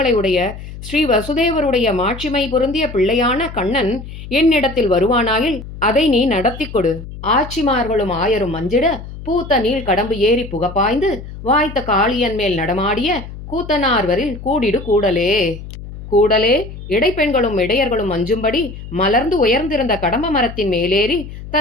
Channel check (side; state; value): left; noise; hum, 12 dB below the sound